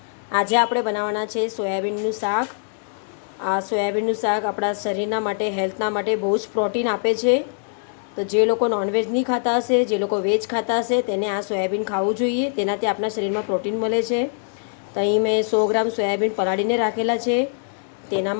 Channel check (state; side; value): silent; right; digital silence